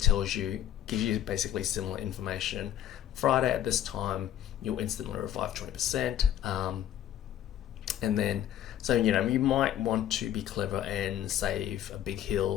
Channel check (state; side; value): quieter; right; 11.1 dB